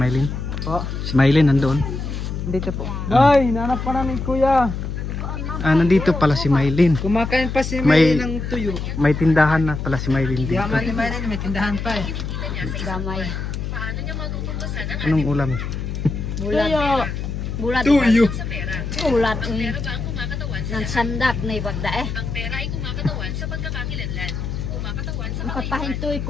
Mylene? Po, Si Mylene nandun. dito po. Ay, nanap pa namin kuya. Nandito pala si Mylene. Kumakain pa si May- Mylene ng tuyo. May tindahan na pala si Mylene Di dito. naman ni Mylene, may tindahan pa eh. Damay. Anong ulam? Bulat. Bulat. Tuyo. Bulat. Nang sandak na ibagda eh. Ang kapahintoy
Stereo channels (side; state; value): left; noise; hum, 5 dB below the sound